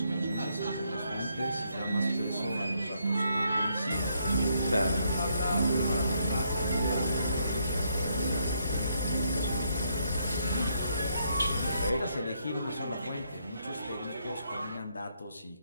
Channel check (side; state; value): both; inverted; correlation -0.74